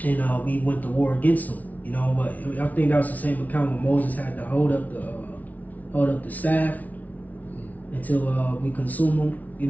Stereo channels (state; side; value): late; right; 0.074 ms